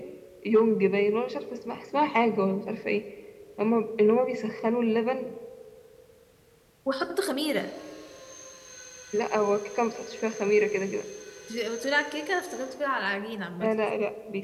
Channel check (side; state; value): both; identical; correlation 1.00